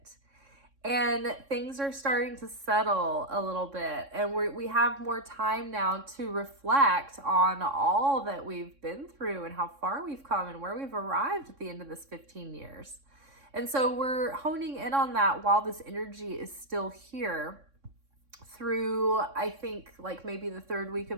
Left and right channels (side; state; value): left; late; 3.6 ms